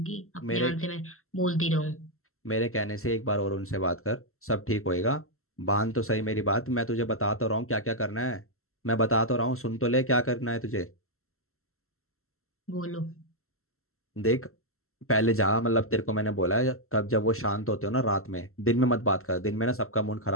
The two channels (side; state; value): right; late; 0.62 ms